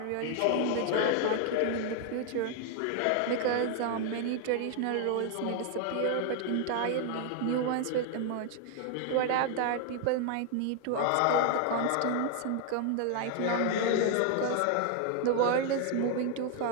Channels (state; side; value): different; both; correlation 0.00